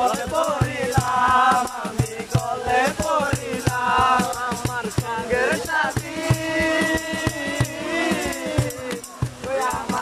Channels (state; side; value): identical; both; correlation 1.00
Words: পড়িলাম আমি গলে পড়িলাম আমার সঙ্গের সাথী ওই